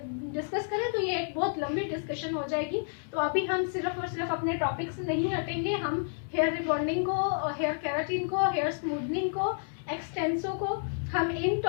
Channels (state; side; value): silent; right; 58 dB below the other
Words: करें तो ये एक बहुत लंबी डिस्कशन हो जाएगी। तो अभी हम सिर्फ और सिर्फ अपने टॉपिक से नहीं हटेंगे, हम हेयर रिबॉन्डिंग को, हेयर केराटिन को, हेयर स्मूथनिंग को, एक्सटेंसो को, हम इन